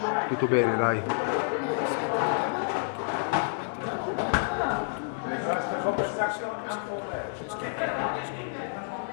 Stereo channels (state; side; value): silent; right; digital silence